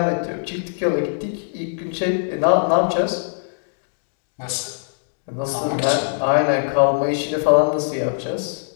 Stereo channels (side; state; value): right; silent; digital silence